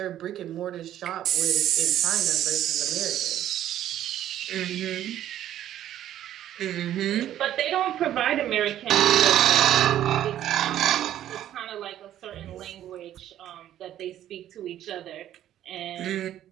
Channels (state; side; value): quieter; left; 11.9 dB